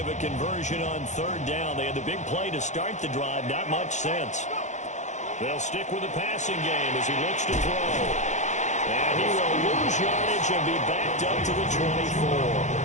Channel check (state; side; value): late; right; 0.34 ms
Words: a conversion on 3rd down. They had the big play to start the drive. Not much sense. They'll stick with the passing game as he looks to throw. And he will lose yardage and be backed up to the 24.